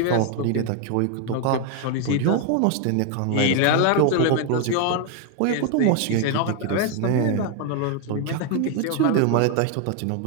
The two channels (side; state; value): both; different; correlation 0.01